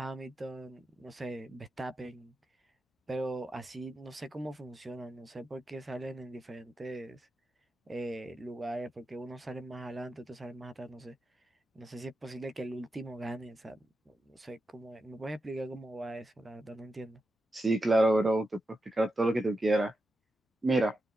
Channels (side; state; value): both; normal; correlation 0.89